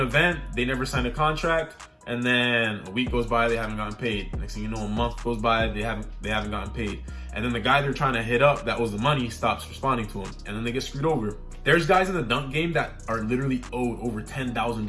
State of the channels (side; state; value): both; identical; correlation 1.00